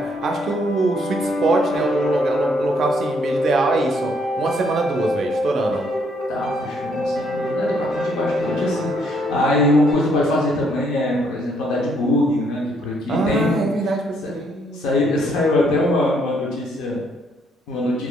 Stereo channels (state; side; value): normal; both; correlation 0.70